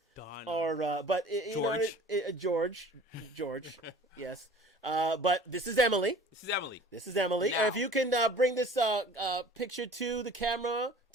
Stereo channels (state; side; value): normal; both; correlation 0.46